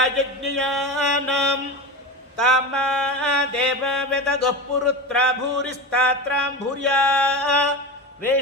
ತಾಮಾ ದೇವವೆದಗಃ ಪುರುತ್ರ ಭೂರಿಸ್ತಾತ್ರಾಂ ಭೂರ್ಯಾ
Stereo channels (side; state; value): both; normal; correlation 0.24